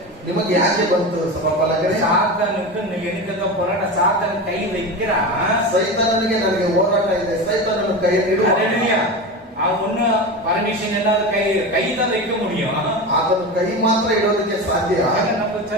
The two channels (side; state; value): both; normal; correlation 0.24